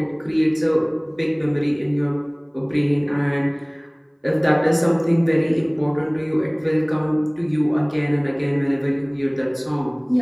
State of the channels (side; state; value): both; identical; correlation 1.00